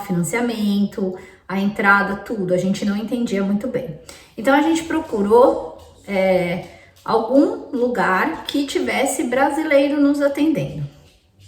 a entrada, tudo. A gente não entendia muito bem. Então, a gente procurou algum lugar que tivesse brasileiro nos atendendo.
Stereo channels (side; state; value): both; identical; correlation 1.00